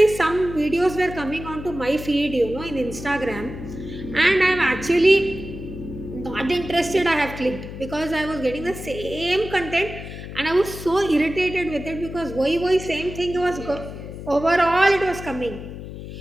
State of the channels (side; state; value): left; noise; hum, 11 dB below the sound